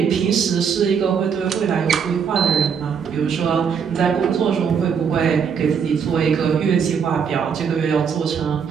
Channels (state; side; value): quieter; left; 6.8 dB